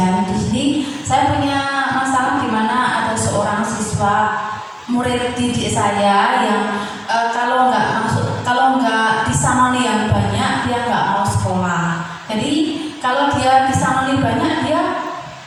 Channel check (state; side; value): identical; both; correlation 1.00